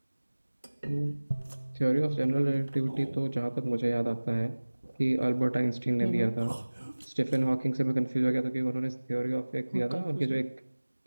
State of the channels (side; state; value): both; inverted; correlation -1.00